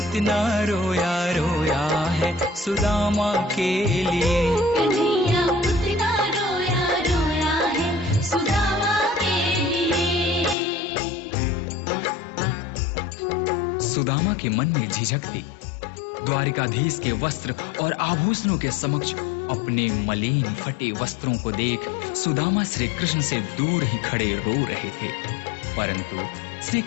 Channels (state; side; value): drops out; right; at 10.6 s